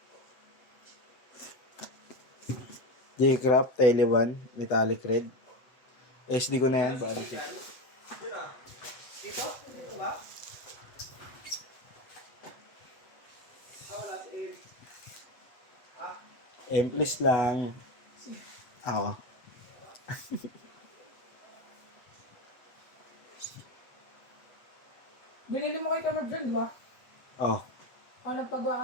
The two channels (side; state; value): right; late; 7.9 ms